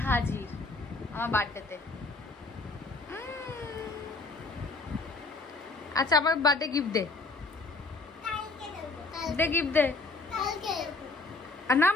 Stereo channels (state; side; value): quieter; right; 3.4 dB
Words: হাজির আমার বার্থডেতে। আচ্ছা আমার বার্থডে গিফট দে, গিফট দে। না